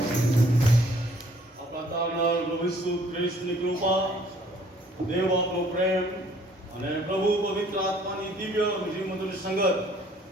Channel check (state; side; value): normal; both; correlation 0.59